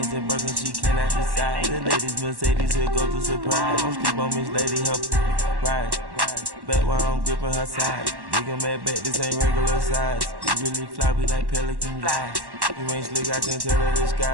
and Birkin, she cannot decide. The ladies Mercedes, here goes the surprise. Don't sleep on Miss Lady, help ride. Back while I'm gripping her side. Nigga mad back, this ain't regular size. You really fly, we like pelican guys. You ain't slick, I can tell her the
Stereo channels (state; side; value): late; left; 1.1 ms